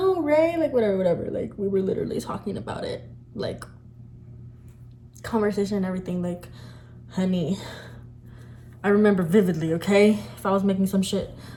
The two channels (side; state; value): both; identical; correlation 1.00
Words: Ray, like whatever. Like we were literally talking about it, like conversation and everything. Like, honey, I remember vividly, okay? If I was making some shit